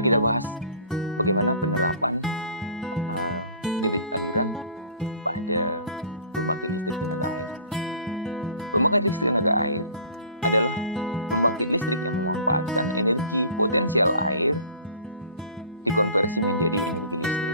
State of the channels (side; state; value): both; inverted; correlation -0.46